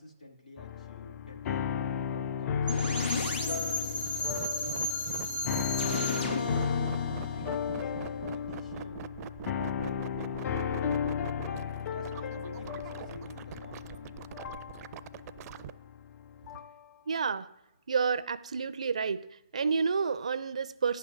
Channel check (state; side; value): inverted; both; correlation -0.57